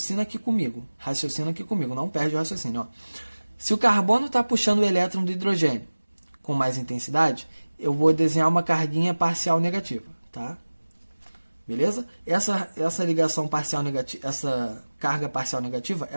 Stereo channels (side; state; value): both; inverted; correlation -1.00